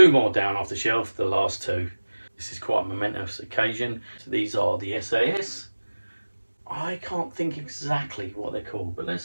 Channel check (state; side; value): inverted; both; correlation -1.00